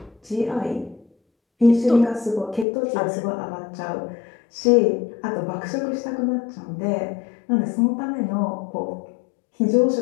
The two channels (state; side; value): drops out; right; at 2.7 s